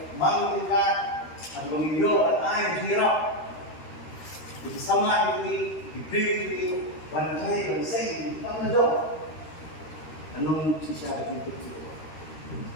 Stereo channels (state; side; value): late; right; 13 ms